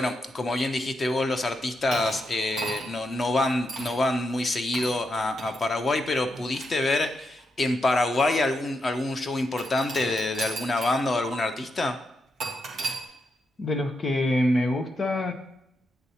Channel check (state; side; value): normal; both; correlation 0.84